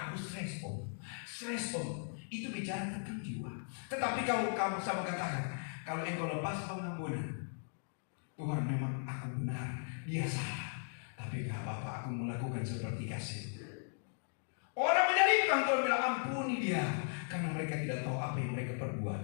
stres om. Itu bicara tentang jiwa. Tetapi kalau kamu sama katakan, kalau engkau lepas pengampunan, Tuhan memang aku benar, dia salah, tapi gak apa-apa, aku melakukan seperti kasih. Orang menyalibkan, Tuhan bilang ampuni dia, karena mereka tidak tahu apa yang mereka perbuat.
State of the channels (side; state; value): right; silent; digital silence